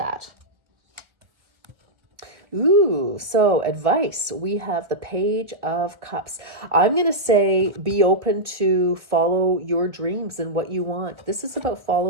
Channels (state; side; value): late; left; 1.5 ms